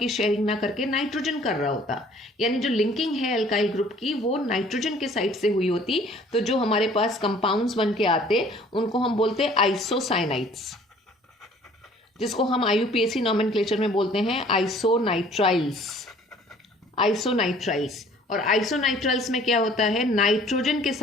शेयरिंग ना करके नाइट्रोजन कर रहा होता, यानी जो लिंकिंग है एल्काइल ग्रुप की वो नाइट्रोजन के साइड से हुई होती, तो जो हमारे पास कंपाउंड्स बन के आते उनको हम बोलते आइसोसाइनाइड्स, जिसको हम IUPAC नॉमेनक्लेचर में बोलते हैं आइसोनाइट्राइल्स। और आइसोनाइट्राइल्स में क्या होता है, नाइट्रोजन के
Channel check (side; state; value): both; normal; correlation 0.54